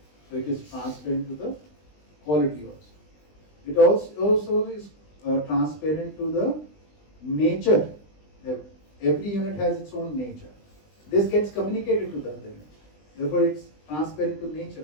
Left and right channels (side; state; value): right; late; 20 ms